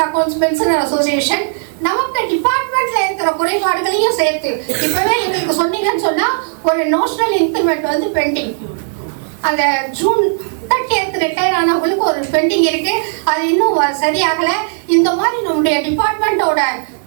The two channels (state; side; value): silent; left; digital silence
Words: accounts pensioner association நமக்கு டிபார்ட்மெண்ட்ல இருக்கிற குறைபாடுகளையும் சேர்த்து இப்பவே எங்களுக்கு சொன்னீங்கன்னு சொன்னா ஒரு நோஷனல் இன்கிரிமெண்ட் வந்து பெண்டிங். அந்த ஜூன் 30th ரிட்டையர் ஆனவங்களுக்கு ஒரு பெண்டிங் இருக்கு. அது இன்னும் சரியாகல. இந்த மாதிரி நம்முடைய டிபார்ட்மெண்டோட